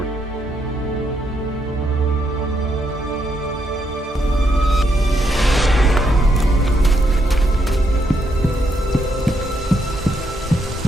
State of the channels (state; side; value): normal; both; correlation 0.77